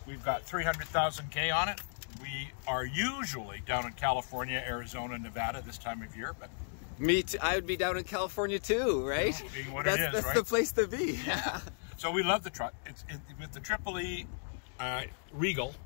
We've got 300,000 K on it. We are usually down in California, Arizona, Nevada this time of year, but me too. I would be down in California too, right? Being what that's it is, that's right? the place to be. Yeah. So we love the truck. It's with the EEE Regal,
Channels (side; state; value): right; silent; digital silence